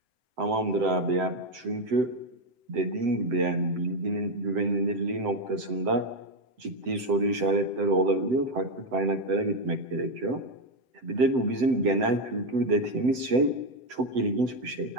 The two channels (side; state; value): left; late; 7.8 ms